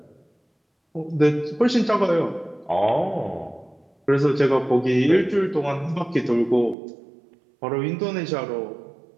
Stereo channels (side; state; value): left; drops out; at 6.8 s